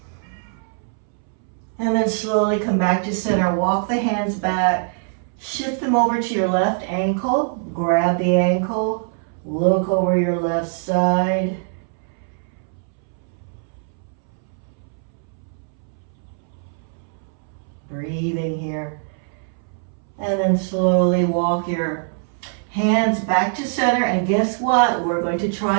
And then slowly come back to center. Walk the hands back. Shift them over to your left ankle. Grab the ankle. Look over your left side. Breathing here. And then slowly walk your hands back to center, and guess what? We're going to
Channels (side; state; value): left; silent; 64 dB below the other